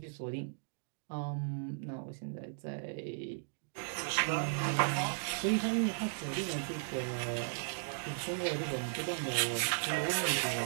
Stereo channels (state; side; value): silent; left; digital silence